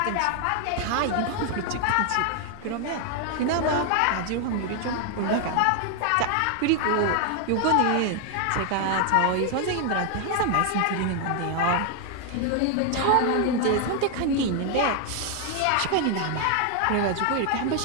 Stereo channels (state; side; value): different; both; correlation 0.00